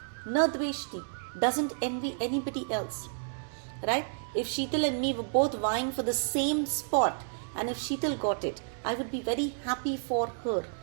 Na dveshti. Doesn't envy anybody else. Right? If Sheetal and me were both vying for the same spot, and if Sheetal got it, I would be very happy for her.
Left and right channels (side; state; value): left; silent; digital silence